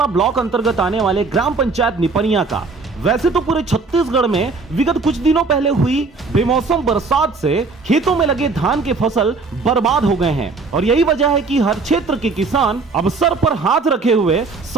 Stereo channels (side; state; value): left; quieter; 4.1 dB